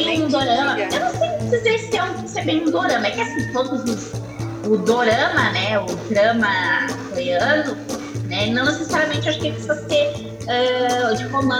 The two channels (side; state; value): both; identical; correlation 1.00